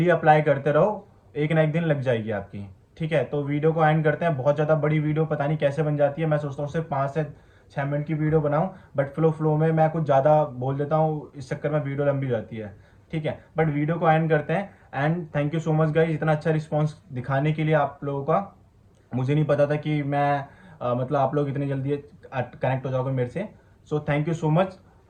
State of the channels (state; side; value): identical; both; correlation 1.00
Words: अप्लाई करते रहो, एक ना एक दिन लग जाएगी आपकी, ठीक है। तो वीडियो को एंड करते हैं। बहुत ज़्यादा बड़ी वीडियो पता नहीं कैसे बन जाती है, मैं सोचता हूँ सिर्फ 5 से 6 मिनट की वीडियो बनाऊँ, बट फ्लो में मैं कुछ ज़्यादा बोल देता हूँ, इस चक्कर में वीडियो लंबी हो जाती है, ठीक है। बट वीडियो को एंड करते हैं। And thank you so much guys, इतना अच्छा रिस्पॉन्स दिखाने के लिए आप लोगों का। मुझे नहीं पता था कि मैं मतलब आप लोग इतनी जल्दी कनेक्ट हो जाओगे मेरे से। So thank you so much